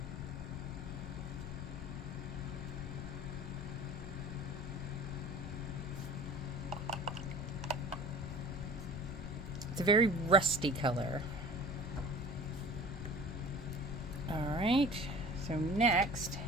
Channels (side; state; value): left; noise; rumble, 9 dB below the sound